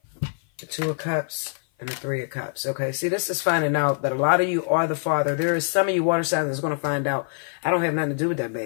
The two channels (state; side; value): silent; right; 55 dB below the other